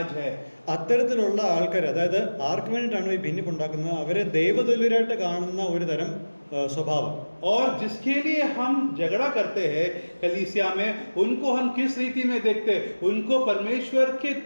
है. അത്തരത്തിലുള്ള ആൾക്കാർ, അതായത് ആർക്ക് വേണ്ടിയിട്ടാണോ ഈ ഭിന്നിപ്പുണ്ടാക്കുന്നത് അവരെ ദൈവതുല്യരായിട്ട് കാണുന്ന ഒരു തരം स्वभाव। और जिसके लिए हम झगड़ा करते हैं कलीसिया में, उनको हम किस रीति में देखते हैं? उनको परमेश्वर के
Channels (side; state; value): both; inverted; correlation -1.00